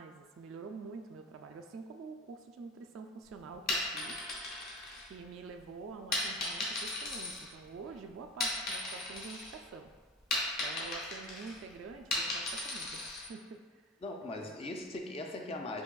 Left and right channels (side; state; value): both; normal; correlation 0.31